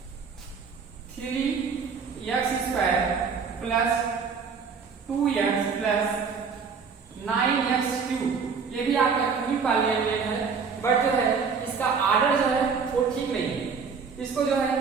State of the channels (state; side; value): quieter; left; 5.6 dB